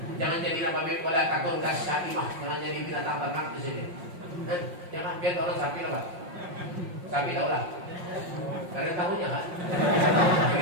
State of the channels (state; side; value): late; left; 5.6 ms